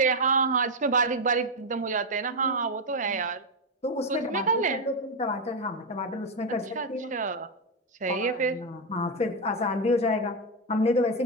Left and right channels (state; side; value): normal; both; correlation 0.05